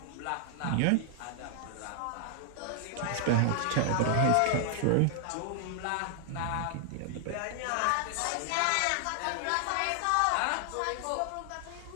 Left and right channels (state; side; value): different; both; correlation 0.00